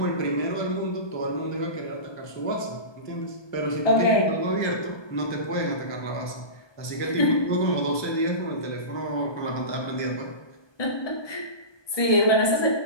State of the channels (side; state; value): right; late; 1.2 ms